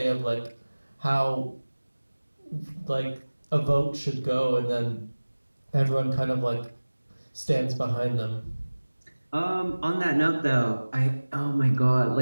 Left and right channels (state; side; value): inverted; both; correlation -1.00